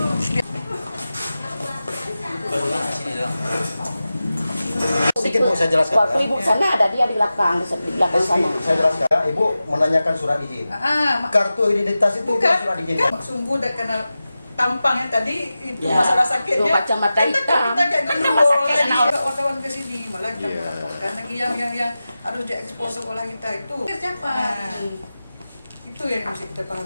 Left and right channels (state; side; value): inverted; both; correlation -0.94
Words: Sedikit Bu, saya jelaskan. Waktu Ibu sana ada dia di belakang sana. Saya jelaskan. Ibu menanyakan surat izin. Kartu identitas itu bukan surat izin. Sungguh udah kena tampang yang tadi itu masalah sakitnya. Itu kacamata hitam. Kita kayak gendul lagi. Wartawan ke sini malah kita melaporkan lagi yang harus diekspos sekolah kita itu. Siapa? Itu yang mesti kita